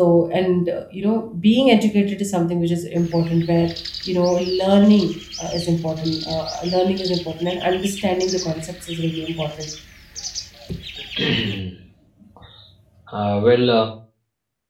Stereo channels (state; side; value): identical; both; correlation 1.00